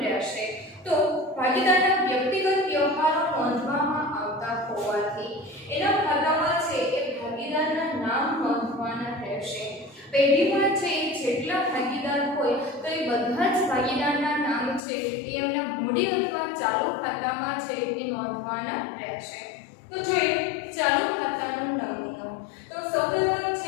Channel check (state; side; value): drops out; right; at 14.8 s